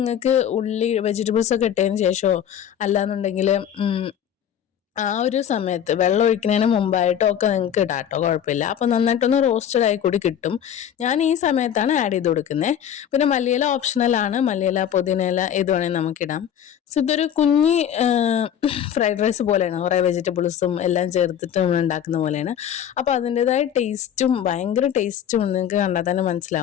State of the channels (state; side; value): quieter; right; 9.4 dB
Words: വെജിറ്റബിൾസ് ഒക്കെ ഇട്ടതിന് ശേഷമോ അല്ലാന്നുണ്ടെങ്കിൽ ആ ഒരു സമയത്ത് വെള്ളം ഒഴിക്കുന്നതിന് മുമ്പായിട്ടോ ഒക്കെ നിങ്ങൾക്ക് ഇടാം കേട്ടോ, കുഴപ്പമില്ല. അപ്പോൾ നന്നായിട്ടൊന്ന് റോസ്റ്റഡ് ആയി കൂടി കിട്ടും. ഞാൻ ഈ സമയത്താണ് ആഡ് ചെയ്ത് കൊടുക്കുന്നത്. പിന്നെ മല്ലിയില ഓപ്ഷണലാണ്. മല്ലിയില, പുതിനയില ഏത് വേണമെങ്കിൽ നമുക്കിടാം. സോ ഇതൊരു കുഞ്ഞി ഫ്രൈഡ് റൈസ് പോലെയാണ്, കുറേ വെജിറ്റബിൾസും എല്ലാം ചേർത്തിട്ട് നമ്മൾ ഉണ്ടാക്കുന്ന പോലെയാണ്. അപ്പോൾ അതിൻ്റെതായ ടേസ്റ്റും ഭയങ്കര ടേസ്റ്റും നിങ്ങൾക്ക് കണ്ടാൽ തന്നെ